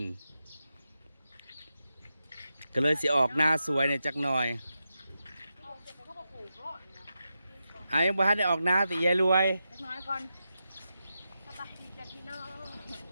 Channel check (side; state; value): both; inverted; correlation -0.89